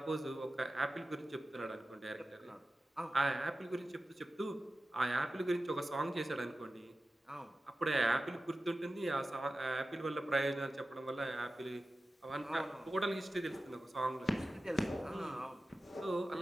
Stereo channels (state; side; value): normal; both; correlation 0.94